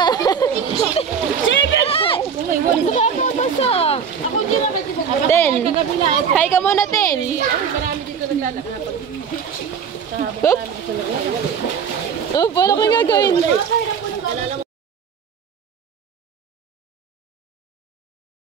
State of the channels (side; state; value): left; quieter; 6.9 dB